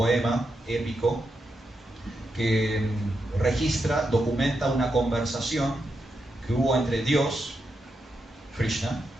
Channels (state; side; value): normal; both; correlation 0.85